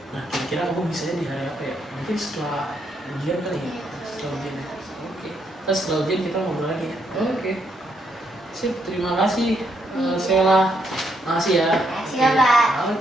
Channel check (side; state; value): both; normal; correlation 0.76